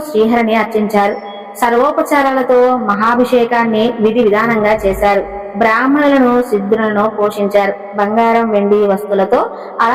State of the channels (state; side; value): identical; both; correlation 1.00